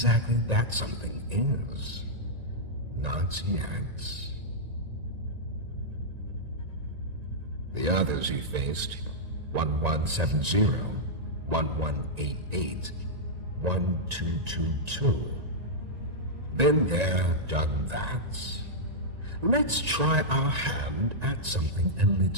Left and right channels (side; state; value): left; late; 1.9 ms